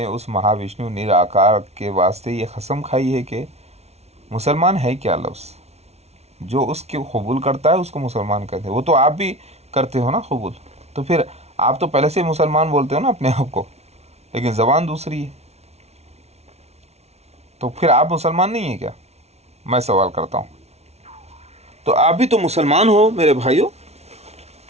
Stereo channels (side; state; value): left; late; 0.31 ms